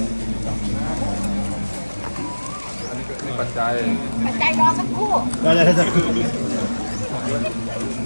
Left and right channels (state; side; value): inverted; both; correlation -1.00